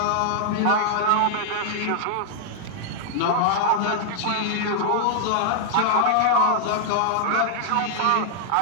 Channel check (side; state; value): both; different; correlation -0.01